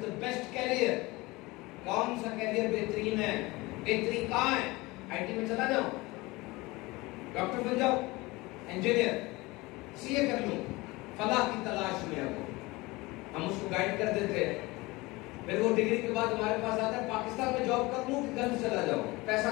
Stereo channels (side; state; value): right; quieter; 22.2 dB